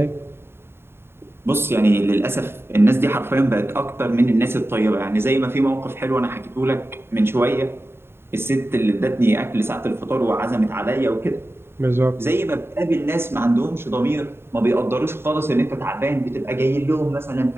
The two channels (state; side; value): late; left; 0.11 ms